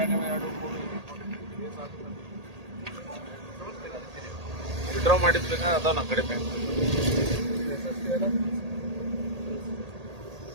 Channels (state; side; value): late; left; 1.8 ms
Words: ಎರಡು ವಿಡ್ರಾ ಮಾಡಿದ್ಬೇಕಾ ಅದಾವ ನಮ್ಮ ಕಡೆ ಬ್ಯಾಂಕ್